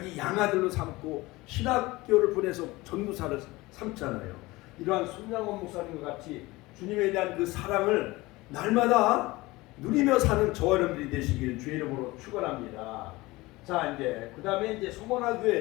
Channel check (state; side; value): quieter; right; 20.8 dB